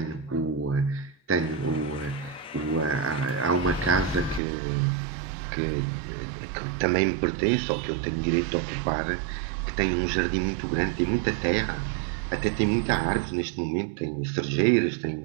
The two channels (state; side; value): drops out; left; at 4.4 s